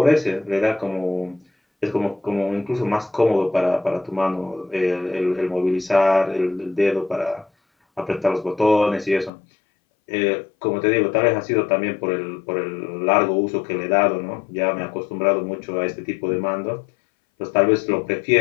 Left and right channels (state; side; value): drops out; right; at 9.3 s